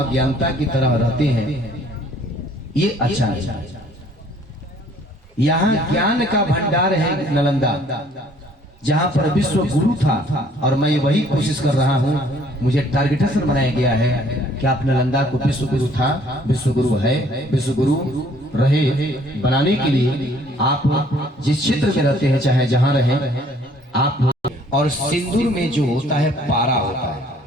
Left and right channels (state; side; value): normal; both; correlation 0.59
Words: की तरह रहते हैं, ये अच्छा है। यहाँ ज्ञान का भंडार है नालंदा, जहाँ पर विश्व गुरु था और मैं वही कोशिश कर रहा हूँ। मुझे टारगेटेशन बनाया गया है कि आप नालंदा को विश्व गुरु था, विश्व गुरु है, विश्व गुरु रहे बनाने के लिए आप जिस क्षेत्र में रहते हैं, चाहे जहाँ रहे आप। और सिंदूर में जो होता है पारा होता है,